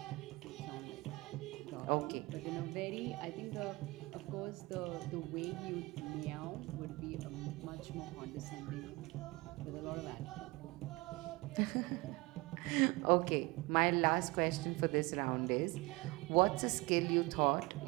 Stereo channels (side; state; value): left; quieter; 23.3 dB